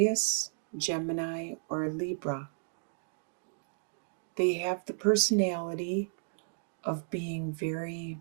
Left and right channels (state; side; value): silent; left; digital silence